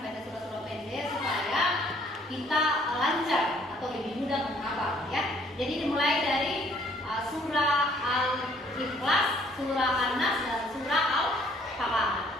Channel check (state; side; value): normal; both; correlation 0.62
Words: Kita lancar atau lebih mudah menghafal ya. Jadi dimulai dari surah Al-Ikhlas, surah An-Nas dan surah Al-Falaq.